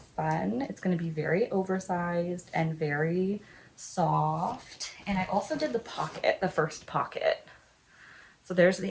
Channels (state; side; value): identical; both; correlation 1.00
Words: fun? It's going to be very oversized and very soft. And I also did the pocket, the first pocket. So there's